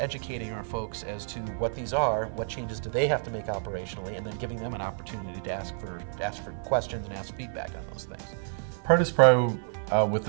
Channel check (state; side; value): silent; left; 56 dB below the other